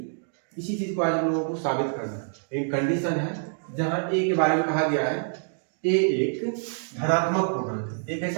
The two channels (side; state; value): left; silent; digital silence